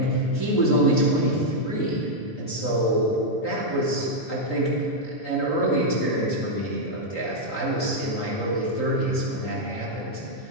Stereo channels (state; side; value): late; right; 3.8 ms